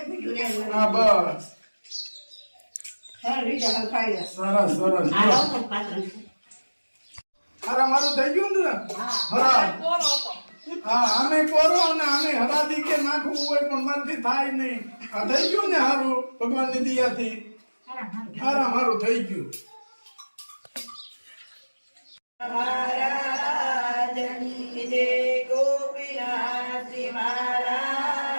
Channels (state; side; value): inverted; both; correlation -1.00